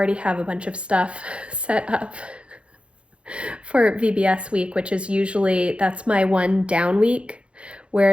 have a bunch of stuff set up for VBS week, which is usually, that's my one down week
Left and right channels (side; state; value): left; late; 0.059 ms